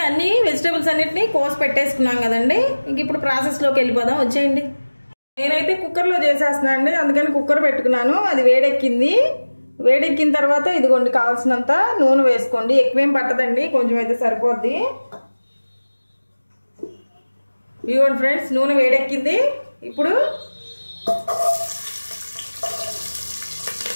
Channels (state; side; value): inverted; both; correlation -1.00